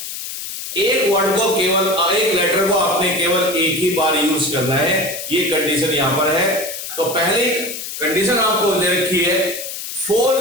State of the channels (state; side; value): noise; left; hiss, 8 dB below the sound